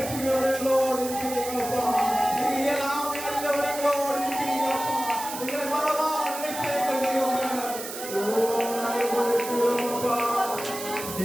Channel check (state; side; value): noise; right; hiss, 9 dB below the sound